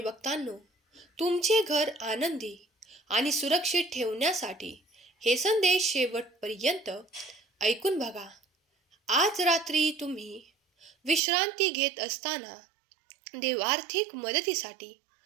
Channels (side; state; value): left; drops out; at 11.2 s